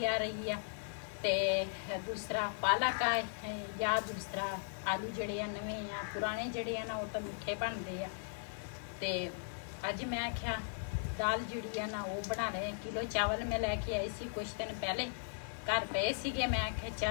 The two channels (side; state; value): right; silent; 53 dB below the other